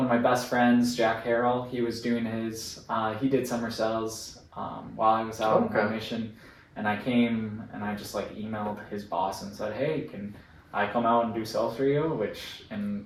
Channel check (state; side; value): identical; both; correlation 1.00